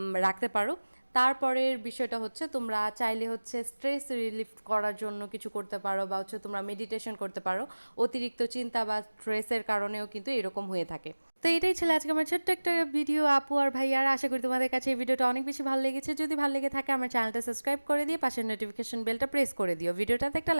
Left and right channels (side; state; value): both; inverted; correlation -1.00